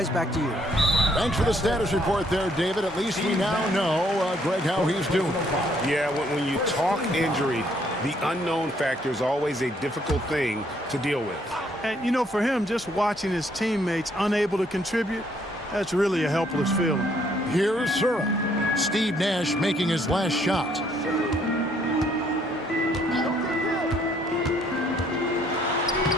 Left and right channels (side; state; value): both; normal; correlation 0.67